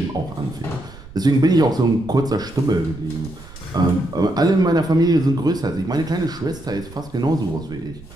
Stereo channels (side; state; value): right; noise; rumble, 18 dB below the sound